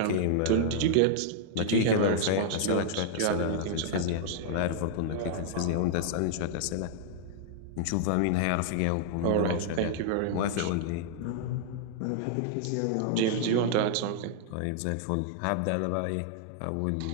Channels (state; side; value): different; both; correlation -0.01